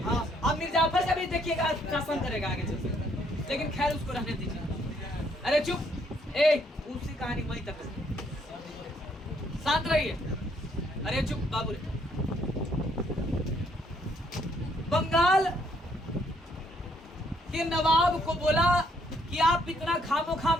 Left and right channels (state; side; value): normal; both; correlation 0.69